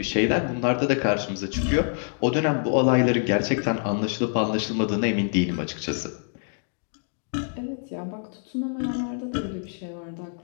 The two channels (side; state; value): right; silent; 61 dB below the other